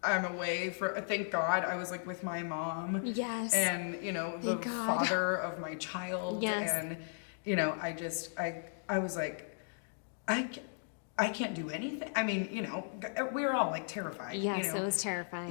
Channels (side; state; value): right; silent; digital silence